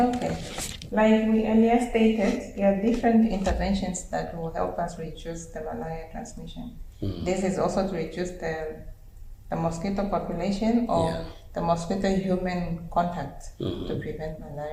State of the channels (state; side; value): identical; both; correlation 1.00